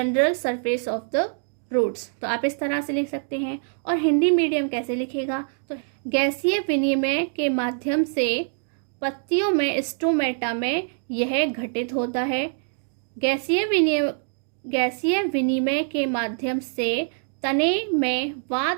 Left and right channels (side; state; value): left; silent; digital silence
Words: surface of the roots। तो आप इस तरह से लिख सकते हैं। और हिंदी मीडियम कैसे लिखेगा, तो गैसीय विनिमय के माध्यम से पत्तियों में स्टोमेटा में यह घटित होता है। गैसीय विनिमय के माध्यम से तने में